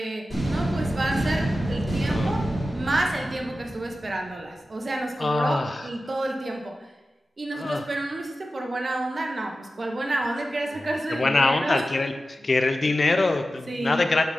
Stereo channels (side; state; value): both; normal; correlation 0.93